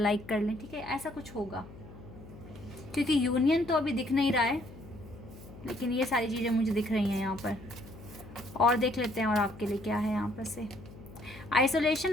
कर लें, ठीक है, ऐसा कुछ होगा। क्योंकि यूनियन तो अभी दिख नहीं रहा है, लेकिन ये सारी चीज़ें मुझे दिख रही हैं यहाँ पर। और देख लेते हैं और आपके लिए क्या है यहाँ पर से।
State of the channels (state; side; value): noise; left; hum, 17 dB below the sound